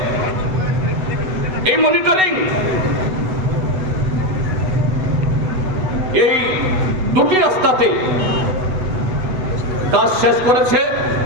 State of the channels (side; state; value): left; late; 8.0 ms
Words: এই মনিটরিং, এই দুটি রাস্তাতে কাজ শেষ করেছে,